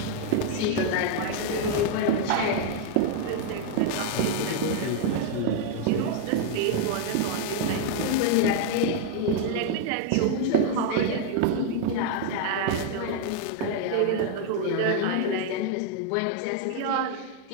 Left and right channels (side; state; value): both; different; correlation 0.00